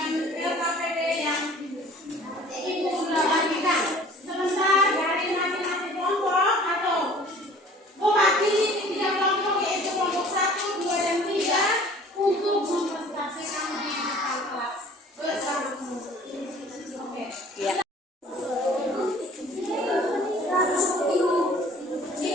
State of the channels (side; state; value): both; normal; correlation 0.50